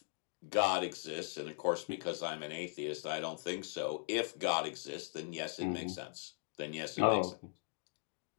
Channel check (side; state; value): right; silent; digital silence